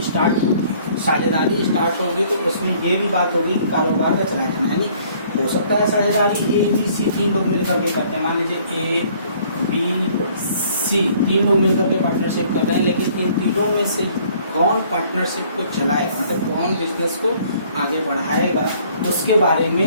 स्टार्ट होगी, साझेदारी स्टार्ट होगी तो उसमें ये भी बात होगी कि कारोबार का चलाया जाना, यानी हो सकता है साझेदारी ए बी सी 3 लोग मिलकर के करते हैं, मान लीजिए ए बी सी 3 लोग मिलकर के पार्टनरशिप कर रहे हैं, लेकिन इन तीनों में से कौन पार्टनरशिप को चलाएगा, मतलब कौन बिजनेस को आगे बढ़ाएगा, उसके बारे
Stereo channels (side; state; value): both; inverted; correlation -0.59